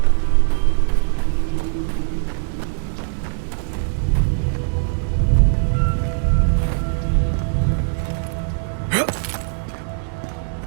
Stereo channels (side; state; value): left; silent; 65 dB below the other